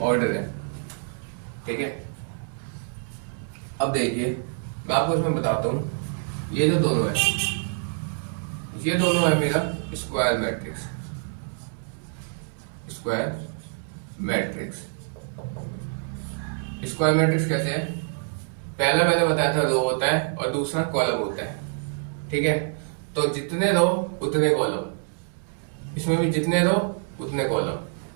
है। ठीक है, अब देखिए मैं आपको इसमें बताता हूँ, ये जो दोनों है, ये दोनों है मेरा square matrix. Square matrix, square matrix कैसे है? पहला मैंने बताया था रो होता है और दूसरा कॉलम होता है। ठीक है, तो जितने रो उतने कॉलम, इसमें भी जितने रो उतने कॉलम,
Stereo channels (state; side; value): silent; left; 61 dB below the other